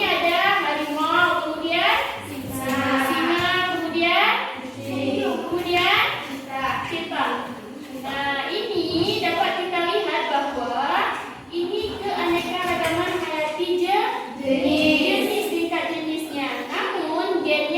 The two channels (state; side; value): identical; both; correlation 1.00